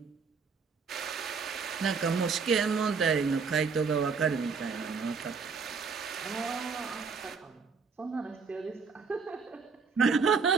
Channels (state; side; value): quieter; left; 5.3 dB